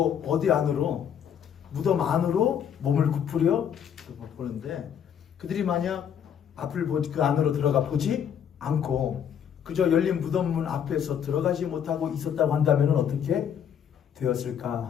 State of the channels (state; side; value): quieter; right; 8.6 dB